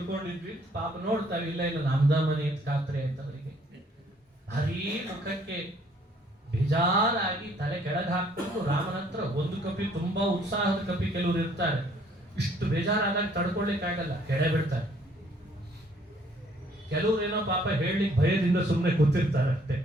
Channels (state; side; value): normal; both; correlation 0.62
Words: ಪಾಪ ನೋಡ್ತಾವೆ, ಇಲ್ಲ ನಮ್ದ ಮನೆ ಅಂತ ಖಾತ್ರಿ ಆಯ್ತು ಅವರಿಗೆ. ಭಾರೀ ಮುಖಕ್ಕೆ ಬೇಜಾರಾಗಿ ತಲೆ ಕೆಳಗೆ ಹಾಕ್ಕೊಂಡು ರಾಮನ ಹತ್ರ ಒಂದು ಕಪಿ, ತುಂಬಾ ಉತ್ಸಾಹದ ಕಪಿ ಕೆಲವರು ಇರ್ತಾರೆ, ಇಷ್ಟು ಬೇಜಾರಾದಾಗ ತಡ್ಕೊಳ್ಳಿಕ್ಕಾಗಲ್ಲ, ಕೆಡೆ ಬಿಡ್ತಾರೆ. ಕೆಲವ್ರೇನೋ ಪಾಪ ಹೇಳಲಿಕ್ಕೆ ಭಯದಿಂದ ಸುಮ್ಮನೆ ಕೂತಿರ್ತಾರೆ ಅಷ್ಟೇ,